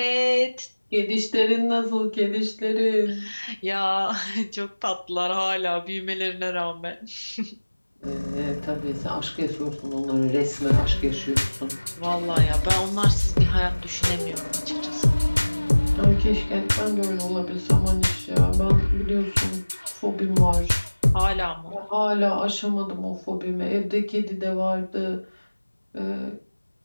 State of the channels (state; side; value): inverted; both; correlation -1.00